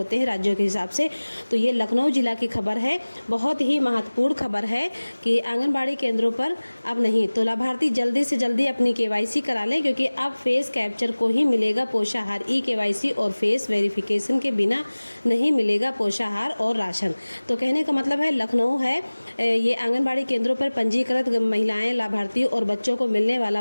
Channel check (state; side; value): inverted; both; correlation -1.00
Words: हैं राज्यों के हिसाब से। तो ये लखनऊ जिला की खबर है, बहुत ही महत्वपूर्ण खबर है कि आंगनबाड़ी केंद्रों पर अब नहीं। तो लाभार्थी जल्दी से जल्दी अपनी केवाईसी करा लें, क्योंकि अब फेस कैप्चर को ही मिलेगा पोषाहार। ई केवाईसी और फेस वेरिफिकेशन के बिना नहीं मिलेगा पोषाहार और राशन। तो कहने का मतलब है लखनऊ है, ये आंगनबाड़ी केंद्रों पर पंजीकृत महिलाएं, लाभार्थी और बच्चों को मिलने